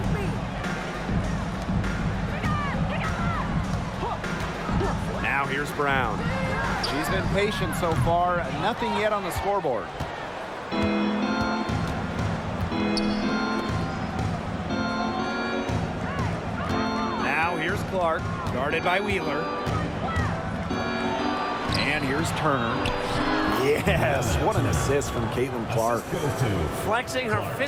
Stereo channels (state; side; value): identical; both; correlation 1.00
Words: Now here's Brown. She's been patient so far. Nothing yet on the scoreboard. Now here's Clark, guarded by Wheeler. And here's Turner. Yes, what an assist from Caitlin-Clark. Flexing her